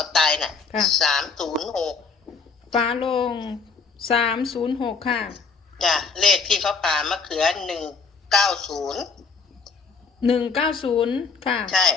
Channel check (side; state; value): right; quieter; 5.0 dB